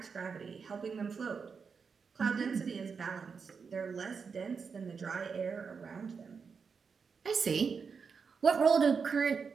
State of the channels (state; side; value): quieter; left; 5.7 dB